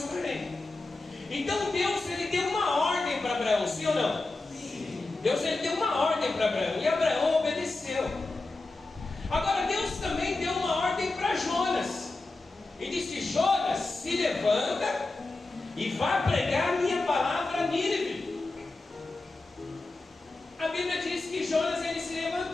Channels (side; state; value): right; quieter; 3.2 dB